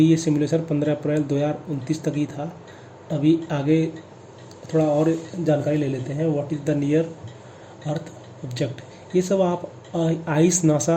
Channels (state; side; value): identical; both; correlation 1.00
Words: ये सिमुलेशन 15 अप्रैल 2029 तक ही था। अभी आगे थोड़ा और जानकारी ले लेते हैं। What is the near earth object, ये सब आप आइस